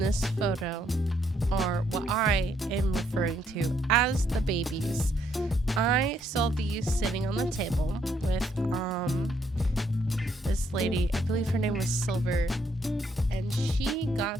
photo or what I am referring to as the babies. I saw these sitting on the table with this lady. I believe her name was Silver, and she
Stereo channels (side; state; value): both; normal; correlation 0.72